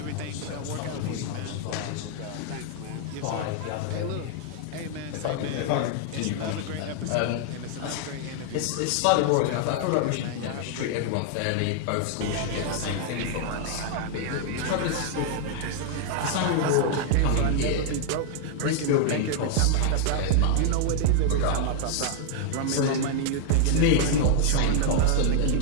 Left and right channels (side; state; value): both; different; correlation 0.00